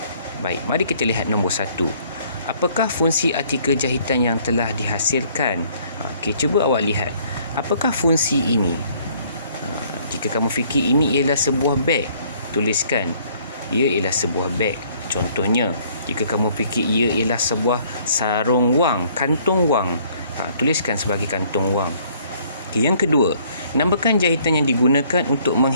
Baik, mari kita lihat nombor 1. Apakah fungsi artikel jahitan yang telah dihasilkan? Cuba awak lihat. Apakah fungsi ini? Jika kamu fikir ini ialah sebuah beg, tuliskan ia ialah sebuah beg. Contohnya, jika kamu fikir ia ialah sebuah sarung wang, kantung wang, tuliskan sebagai kantung wang. Yang kedua, namakan jahitan yang digunakan untuk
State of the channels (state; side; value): inverted; both; correlation -0.61